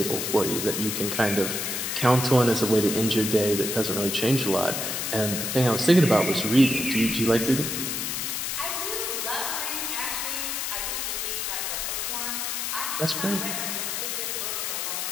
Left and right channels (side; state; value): left; noise; hiss, 2 dB below the sound